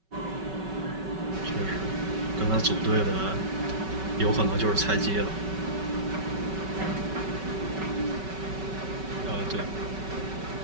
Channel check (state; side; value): late; left; 5.3 ms